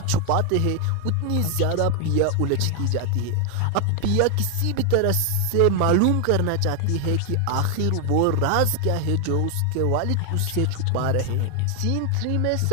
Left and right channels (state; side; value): different; both; correlation 0.00